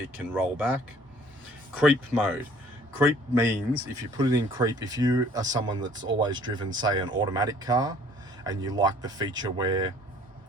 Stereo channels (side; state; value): both; normal; correlation 0.56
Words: can roll back. Creep mode. Creep means if you put it in creep, if you are someone that's always driven, say, an automatic car, and you like the feature where